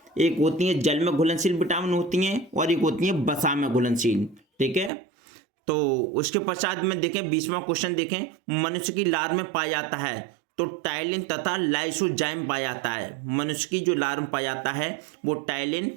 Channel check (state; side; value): drops out; left; at 4.9 s